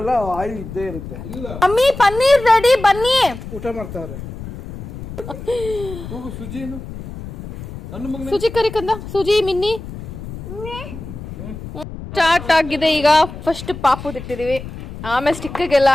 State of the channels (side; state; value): left; noise; rumble, 11 dB below the sound